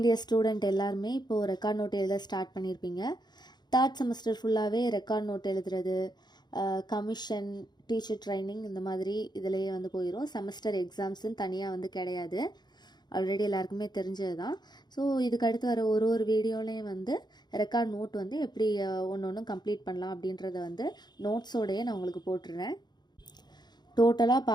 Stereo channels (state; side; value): late; right; 0.21 ms